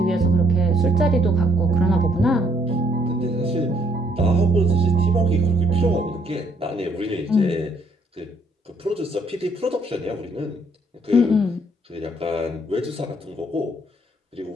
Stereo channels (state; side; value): normal; both; correlation 0.68